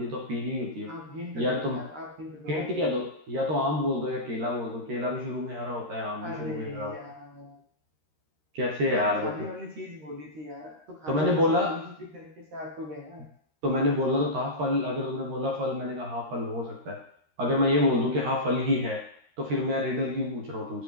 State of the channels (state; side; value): late; left; 13 ms